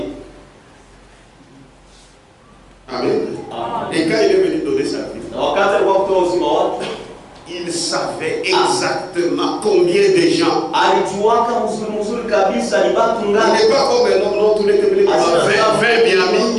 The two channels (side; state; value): both; identical; correlation 1.00